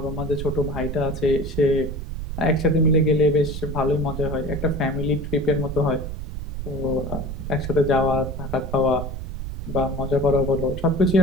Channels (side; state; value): right; noise; rumble, 6 dB below the sound